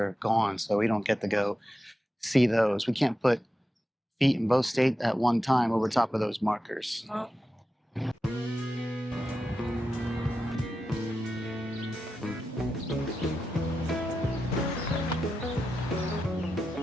gone, so we don't get to go see those. We can't put feet in both states at one time over top of those markers. Oh.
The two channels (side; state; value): both; normal; correlation 0.90